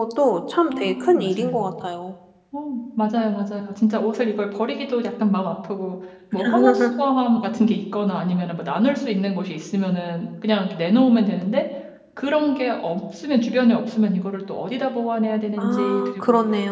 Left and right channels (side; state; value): both; identical; correlation 1.00